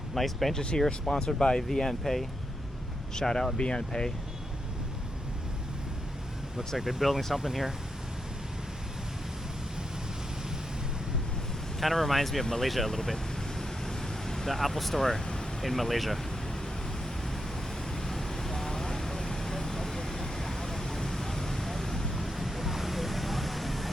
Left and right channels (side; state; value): both; normal; correlation 0.84